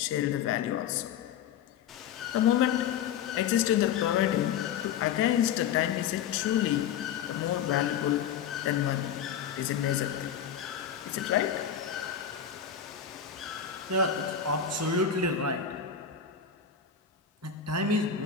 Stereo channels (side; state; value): right; quieter; 8.1 dB